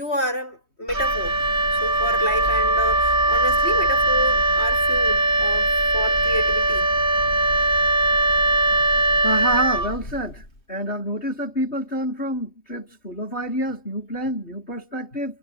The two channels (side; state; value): right; late; 3.2 ms